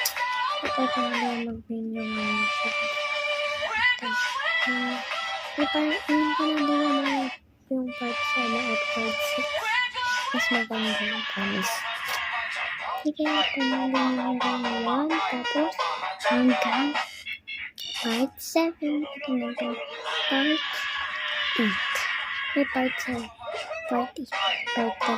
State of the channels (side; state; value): both; identical; correlation 1.00